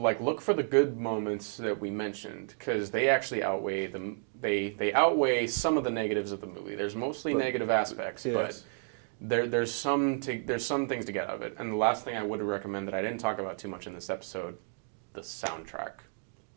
for the good moments that we mentioned, because they actually outweigh them. They outweigh some of the negatives of the movie. There's mostly negative aspects, but there's some things to get out of it. And the last thing I would recommend that I didn't talk about too much in this episode. The soundtrack.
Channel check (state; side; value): silent; left; 57 dB below the other